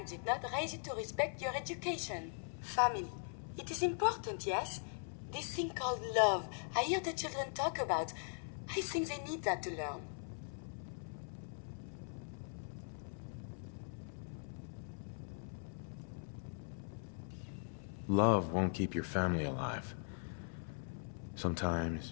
did not raise you to respect your education. Family. It is important, yes? This thing called love, I hear the children talk about. I think they need that to learn. Love won't keep your family alive.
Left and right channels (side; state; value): right; silent; 51 dB below the other